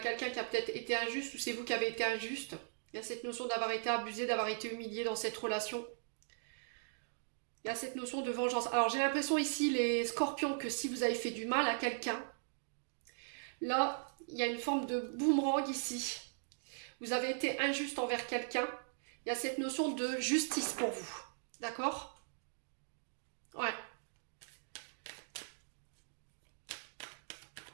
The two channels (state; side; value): silent; left; digital silence